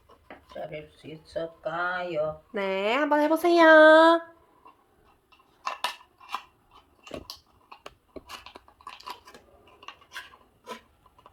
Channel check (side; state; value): both; identical; correlation 1.00